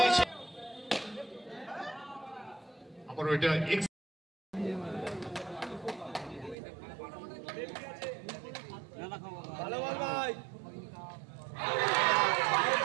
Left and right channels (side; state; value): left; drops out; at 6.6 s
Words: আবারও এটা ভালো বল ভাই।